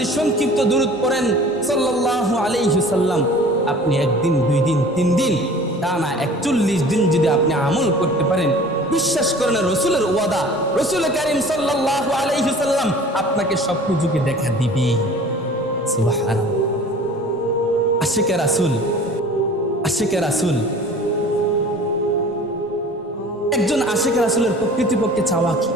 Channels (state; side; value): normal; both; correlation 0.45